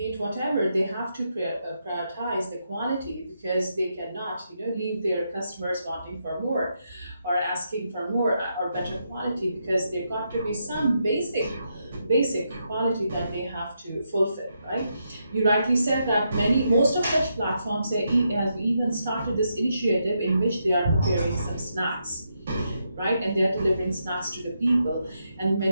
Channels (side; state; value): both; inverted; correlation -0.81